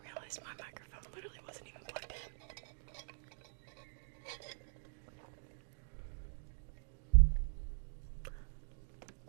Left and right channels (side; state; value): left; silent; digital silence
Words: realized my microphone literally wasn't even plugged in.